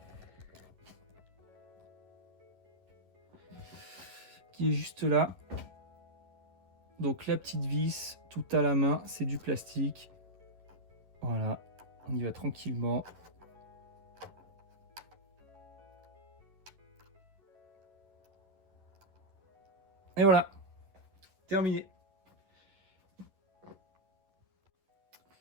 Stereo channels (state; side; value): late; left; 11 ms